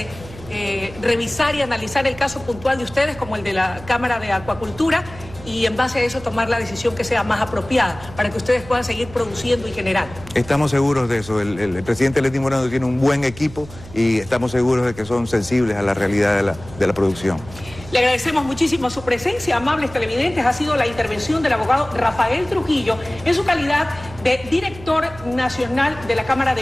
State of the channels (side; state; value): right; noise; hum, 17 dB below the sound